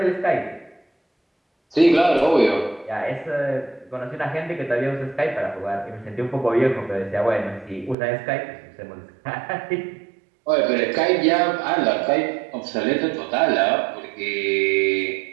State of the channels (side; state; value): left; drops out; at 8.0 s